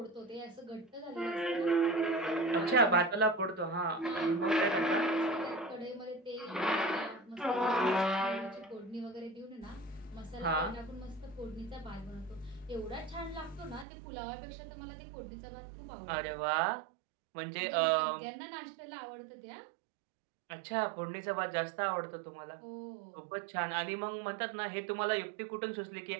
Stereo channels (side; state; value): left; drops out; at 13.9 s